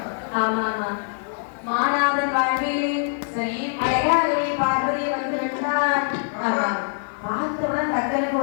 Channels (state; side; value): silent; right; digital silence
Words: ஆமா ஆமா, மாநாதன் வாழ்விலே சரி அழகாகவே பார்வதியை வந்து கண்டான். ஆமா, பார்த்தவுடன் தக்கனுக்கு